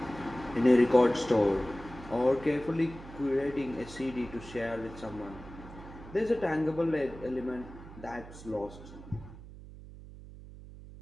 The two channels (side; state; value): right; noise; hum, 16 dB below the sound